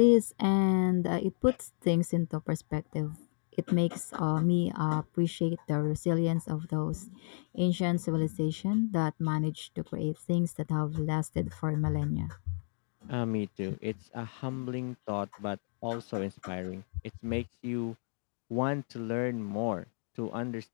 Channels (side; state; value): right; silent; 56 dB below the other